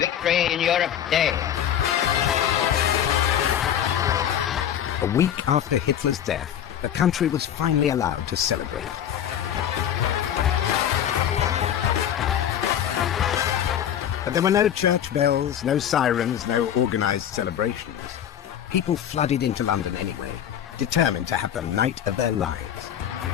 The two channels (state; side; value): quieter; right; 9.9 dB